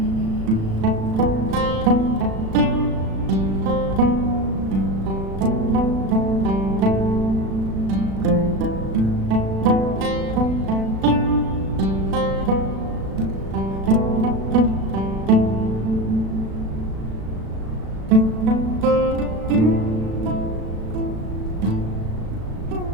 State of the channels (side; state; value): left; late; 36 ms